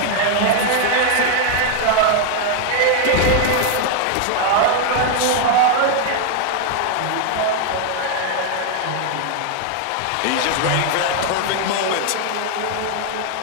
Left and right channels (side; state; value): both; different; correlation 0.00